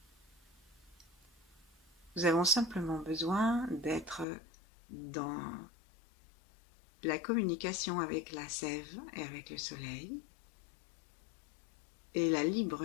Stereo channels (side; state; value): right; drops out; at 4.2 s